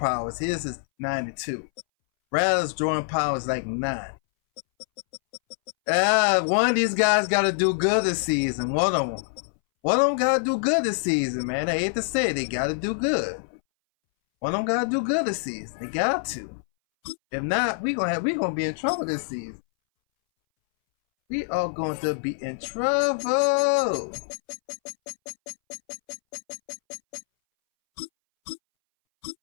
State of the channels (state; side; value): silent; right; 61 dB below the other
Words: His is 92. Rattles drawing power is like 9. One of these guys got to do good this season. One of them got to do good this season, man. I hate to say it. They got to do good. One of them got to do good this season. They got to. If not, we gonna be in trouble this season. We are going to be in trouble.